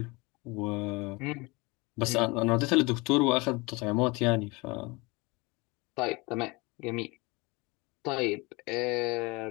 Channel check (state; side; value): quieter; right; 25.6 dB